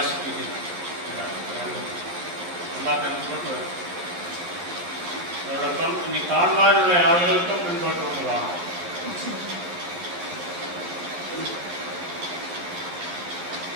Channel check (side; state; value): left; late; 12 ms